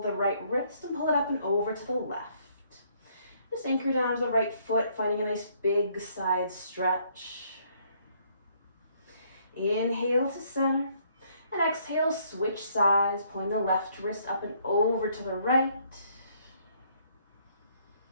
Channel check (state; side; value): inverted; both; correlation -0.67